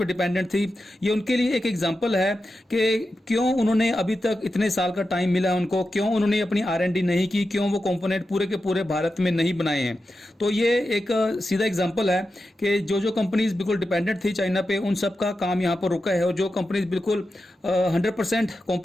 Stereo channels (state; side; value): normal; both; correlation 0.90